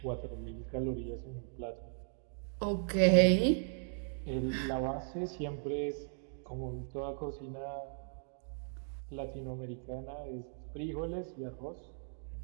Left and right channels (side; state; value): left; silent; digital silence